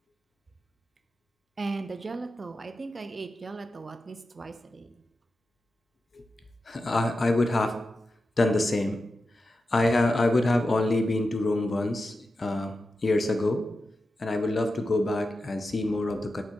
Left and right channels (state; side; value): normal; both; correlation 0.91